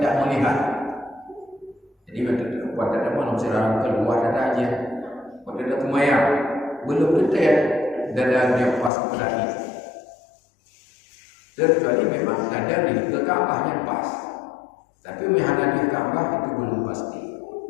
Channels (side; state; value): right; drops out; at 8.9 s